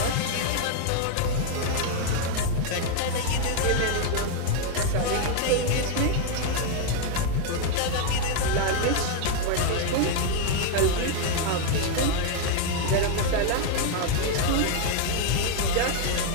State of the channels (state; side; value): different; both; correlation 0.00